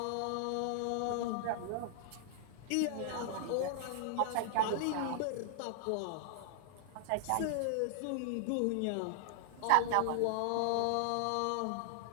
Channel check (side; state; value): both; different; correlation 0.00